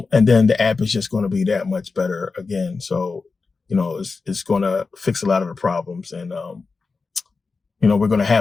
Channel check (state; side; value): quieter; right; 4.3 dB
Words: then the app is just going to be that much better again. So, you know, it's going to fix a lot of the problems. And, you know, we're going to